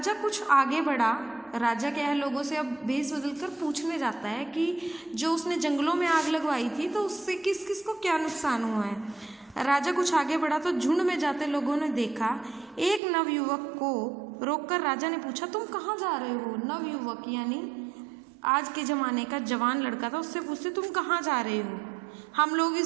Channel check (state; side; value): drops out; left; at 13.0 s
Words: कुछ आगे बढ़ा। राजा क्या है, लोगों से अब भेस बदलकर पूछने जाता है कि जो उसने जंगलों में आग लगवाई थी तो उससे किस किस को क्या नुकसान हुआ है। राजा कुछ आगे बढ़ा तो झुंड में जाते लोगों ने देखा एक नवयुवक को। रोककर राजा ने पूछा, तुम कहाँ जा रहे हो? नवयुवक यानी आज के ज़माने का जवान लड़का था, उससे पूछते तुम कहाँ जा रहे हो? हम लोग इस